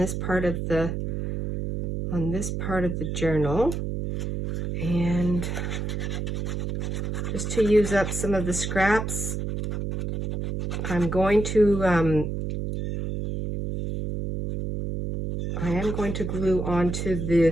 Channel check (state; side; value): noise; right; hum, 3 dB below the sound